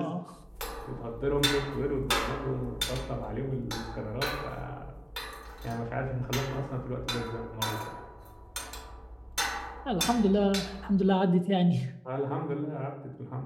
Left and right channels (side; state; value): both; identical; correlation 1.00